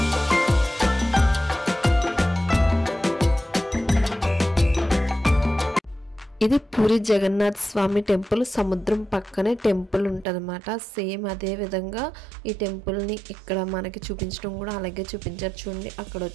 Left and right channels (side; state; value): left; drops out; at 10.2 s